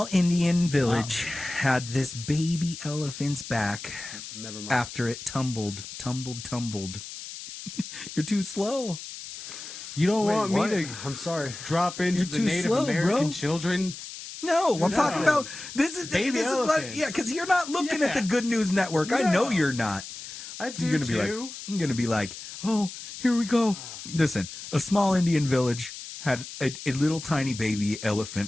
Indian village had this baby elephant's back Never mind. after it tumbled. You're too slow. You don't Wait, want what? me to I'm sorry. drop into You're the too Native slow, American bro. children? No, I'm talking about this is Baby this is what, elephants. yeah, because you're not looking at Yeah. the Good News Network. I know you're not. I do You're gonna be like, too. I'm gonna be like, oh, here we go. Listen, a small Indian village had a little tiny baby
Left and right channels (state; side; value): noise; left; hiss, 11 dB below the sound